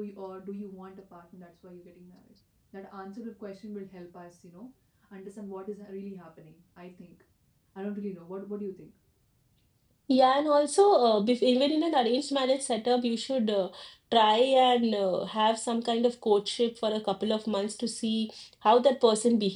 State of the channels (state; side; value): identical; both; correlation 1.00